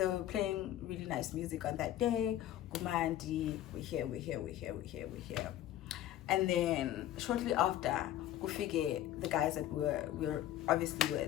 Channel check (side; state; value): right; quieter; 12.8 dB